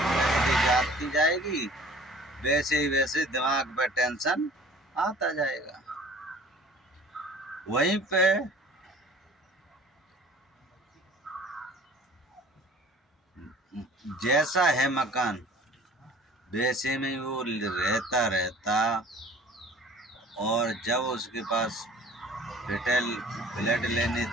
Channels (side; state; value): both; normal; correlation 0.48